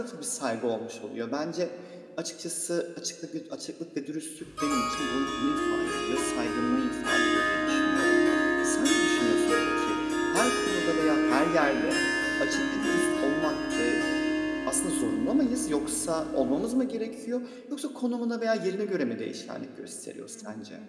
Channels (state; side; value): identical; both; correlation 1.00